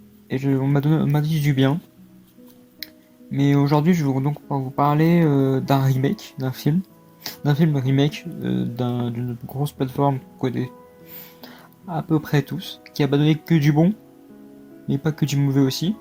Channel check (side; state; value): both; identical; correlation 1.00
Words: Et on m'a dit du bien. Mais aujourd'hui, je vais donc vous parler d'un remake d'un film. D'un film remake d'une grosse plateforme qu'on connaît à peu près tous. Qui a pas donné que du bon, mais pas que du mauvais aussi.